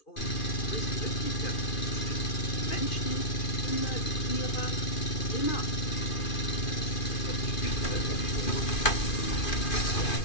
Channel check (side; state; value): right; late; 2.4 ms